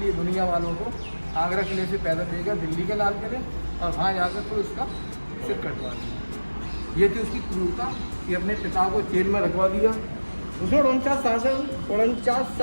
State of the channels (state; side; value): inverted; both; correlation -1.00